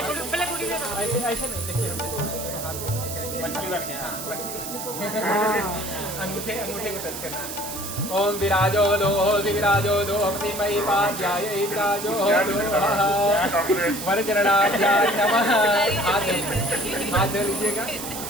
ऐसे नहीं देखिए अंगूठे को टच करना। ओम विराजो दोहपति मयि पाध्याय विराजो वरचरणाध्याय नमः। हाथ धो लीजिएगा।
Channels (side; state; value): right; noise; hiss, 8 dB below the sound